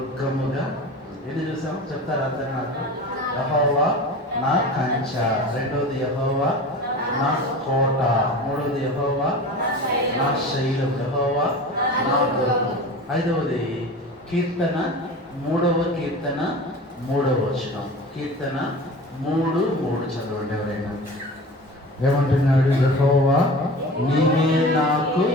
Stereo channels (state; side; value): normal; both; correlation 0.35